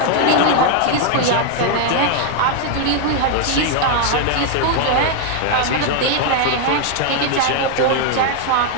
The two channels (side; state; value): both; different; correlation 0.01